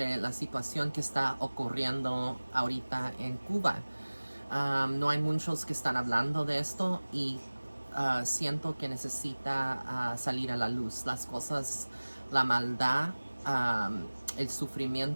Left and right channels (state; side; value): inverted; both; correlation -1.00